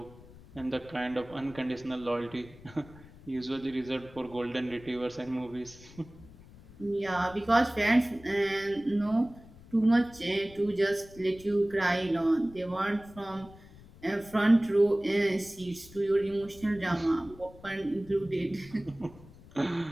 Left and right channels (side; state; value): left; noise; rumble, 21 dB below the sound